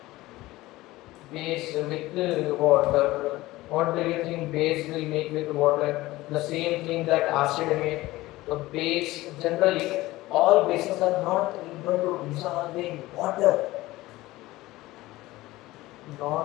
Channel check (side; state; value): right; quieter; 18.3 dB